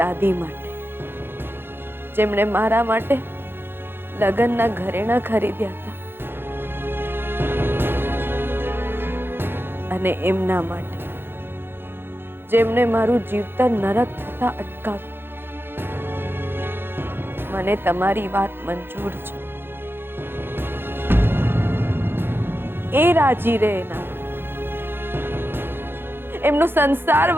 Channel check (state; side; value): late; left; 0.10 ms